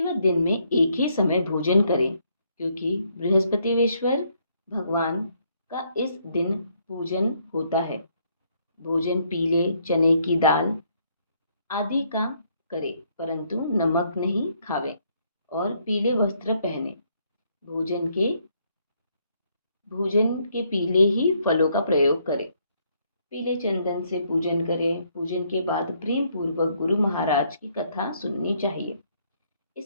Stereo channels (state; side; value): inverted; both; correlation -0.71